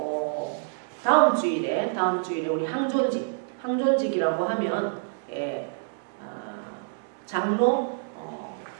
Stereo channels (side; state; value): left; silent; digital silence